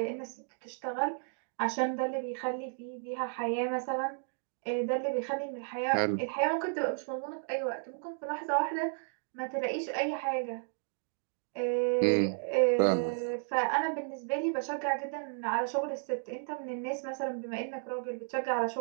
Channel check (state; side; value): silent; left; digital silence